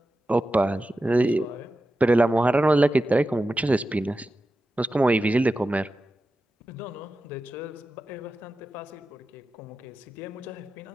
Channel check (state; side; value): normal; both; correlation 0.92